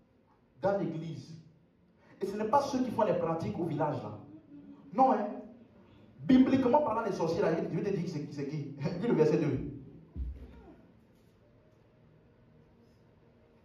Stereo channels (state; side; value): identical; both; correlation 1.00